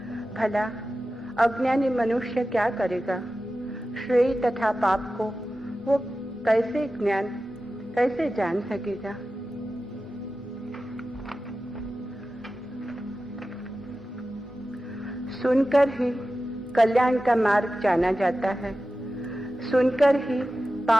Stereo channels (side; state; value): both; normal; correlation 0.94